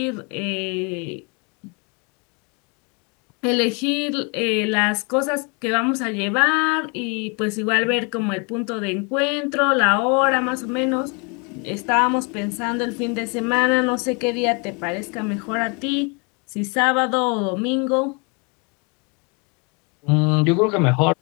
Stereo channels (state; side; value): quieter; right; 32.9 dB